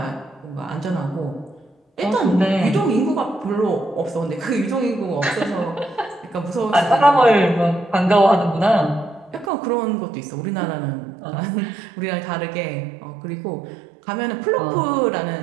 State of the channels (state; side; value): drops out; left; at 9.5 s